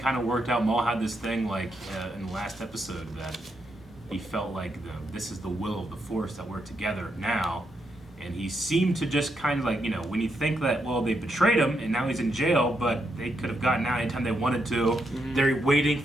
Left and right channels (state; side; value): normal; both; correlation 0.80